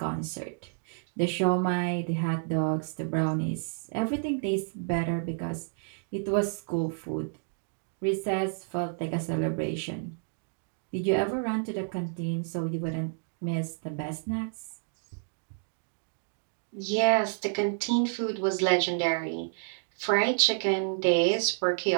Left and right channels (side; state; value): left; silent; digital silence